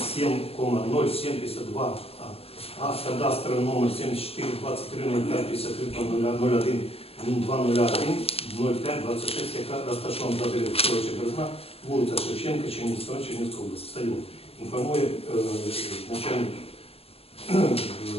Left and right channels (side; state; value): right; late; 0.28 ms